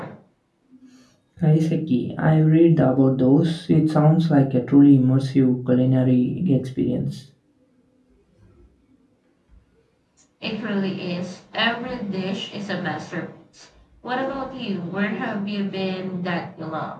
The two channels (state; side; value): identical; both; correlation 1.00